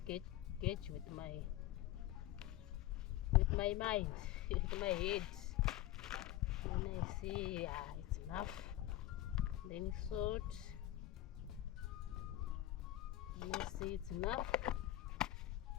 gauge with my mind, with my head. And I see, yeah, it's enough. Then salt. And I see it's enough.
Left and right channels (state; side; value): quieter; right; 14.8 dB